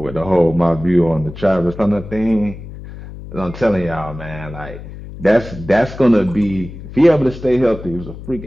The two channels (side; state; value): left; noise; hum, 13 dB below the sound